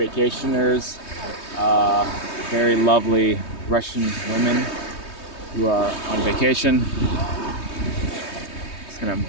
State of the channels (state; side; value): late; right; 3.2 ms